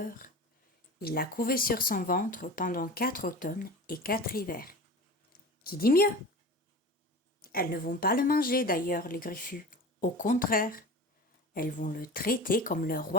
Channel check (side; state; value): both; normal; correlation 0.35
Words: Il l'a couvée sur son ventre pendant 4 automnes et 4 hivers. Qui dit mieux? Elles ne vont pas le manger d'ailleurs, les griffus. Au contraire, elles vont le traiter comme le